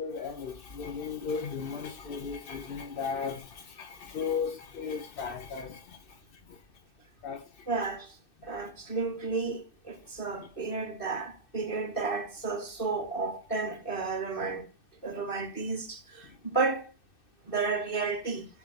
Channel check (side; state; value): right; late; 2.6 ms